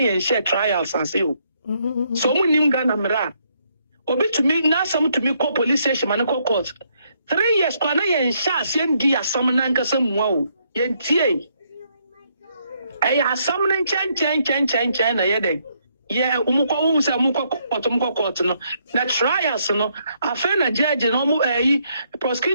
hye trials ase o so mu nim Ghana mra obetumi na sam tumi ko police station man ko court 3 years kwana ye hye ase ndi asam na nkasa muwa o yentie asam na chen na yede ye umukwa se umukwa court no na trials no afa na judge no mu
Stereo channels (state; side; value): inverted; both; correlation -0.73